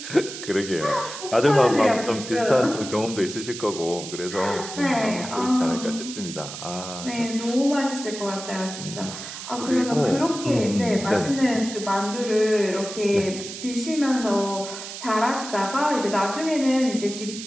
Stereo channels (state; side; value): noise; right; hiss, 10 dB below the sound